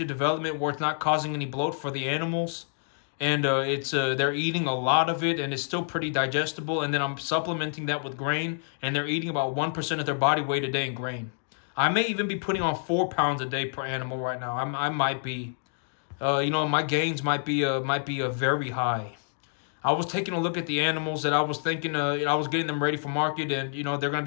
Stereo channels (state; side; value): silent; right; digital silence